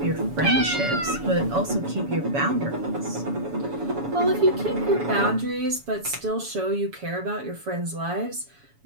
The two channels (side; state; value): left; late; 7.1 ms